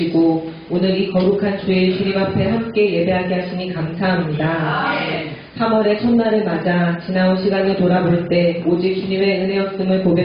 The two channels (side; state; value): both; identical; correlation 1.00